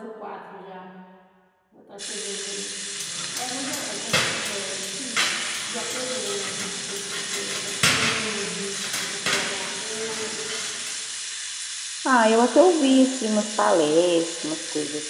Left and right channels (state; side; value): identical; both; correlation 1.00